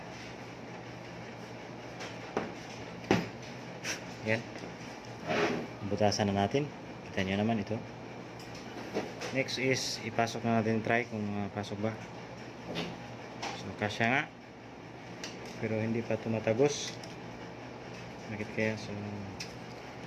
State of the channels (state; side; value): identical; both; correlation 1.00